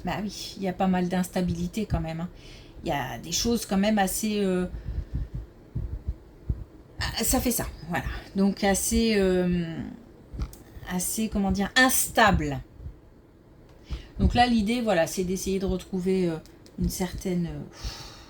Bah oui, il y a pas mal d'instabilité quand même. Hein. Il y a des choses quand même assez... ça fait ça, voilà. Donc assez, assez, comment dire, instable. Donc là, l'idée, voilà, c'est d'essayer de retrouver une certaine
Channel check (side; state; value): both; identical; correlation 1.00